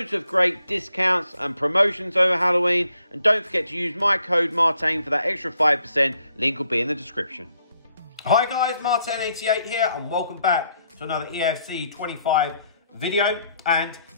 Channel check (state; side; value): inverted; both; correlation -0.72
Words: of great discounts and promotions over Halloween, and don't forget to use my code Martin for that extra 5%. Link will be in the description. Hi guys, Martin88 here, and welcome back to another EFC 25 video. And